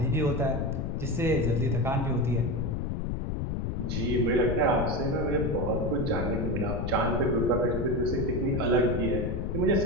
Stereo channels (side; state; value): left; noise; rumble, 2 dB below the sound